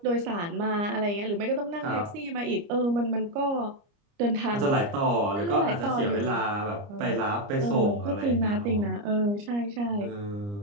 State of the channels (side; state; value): left; late; 29 ms